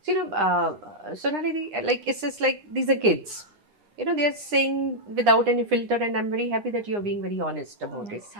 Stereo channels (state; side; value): late; left; 9.8 ms